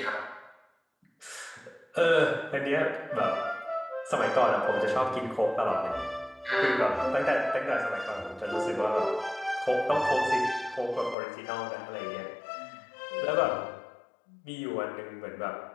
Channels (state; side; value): drops out; right; at 11.2 s